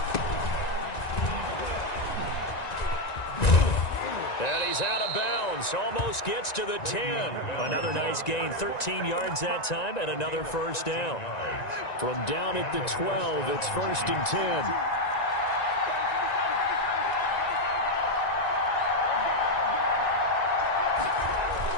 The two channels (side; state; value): right; late; 1.9 ms